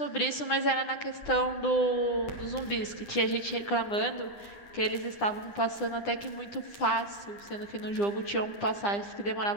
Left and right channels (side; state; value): right; late; 9.9 ms